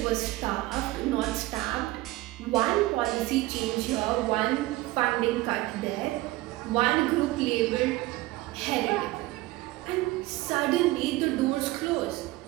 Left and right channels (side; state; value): left; quieter; 18.7 dB